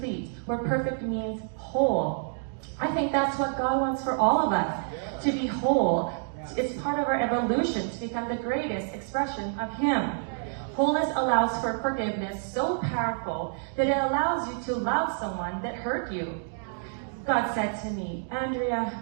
where perfect means whole. I think that's what God wants for all of us, to be whole. It's part of our evolution to become the greatest expression of Him. Wholeness allows for forgiveness so powerful that it allows you to love someone that hurt you. God said to me,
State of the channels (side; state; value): left; silent; digital silence